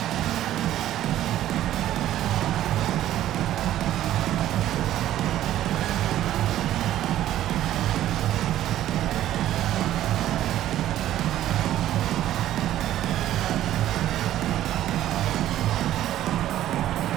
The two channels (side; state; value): left; quieter; 12.9 dB